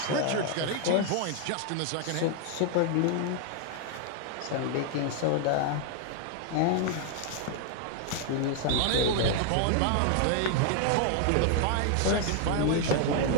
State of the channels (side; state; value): both; different; correlation 0.00